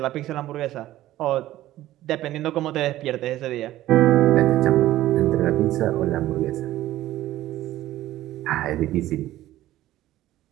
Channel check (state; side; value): quieter; left; 14.8 dB